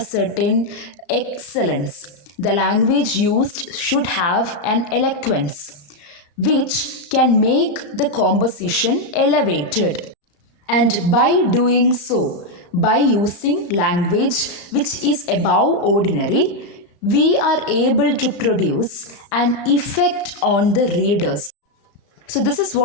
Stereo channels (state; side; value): late; right; 34 ms